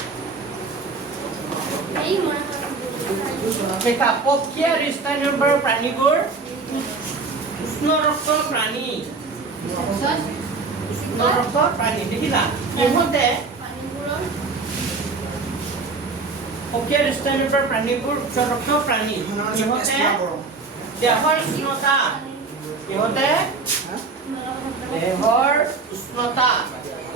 এই মনে দেখা পক্ষী আৰু স্তন্যপায়ী প্ৰাণীবোৰ উষ্ণ ৰক্ত প্ৰাণী উষ্ণ ৰক্ত প্ৰাণী দেখিলা ইহঁতে পানীবোৰৰ পক্ষী আৰু স্তন্যপায়ী প্ৰাণীবোৰ উচ্চ ৰক্ত প্ৰাণী ইহঁতে দেহৰ উষ্ণতা ইহঁতে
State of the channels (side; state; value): left; quieter; 4.2 dB